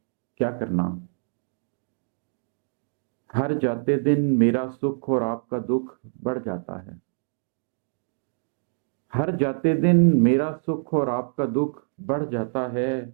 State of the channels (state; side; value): silent; left; digital silence